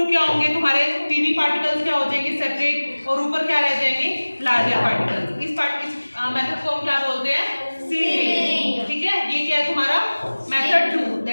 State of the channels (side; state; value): both; inverted; correlation -1.00